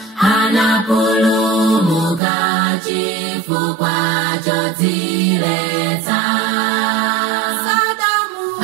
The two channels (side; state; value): left; drops out; at 2.2 s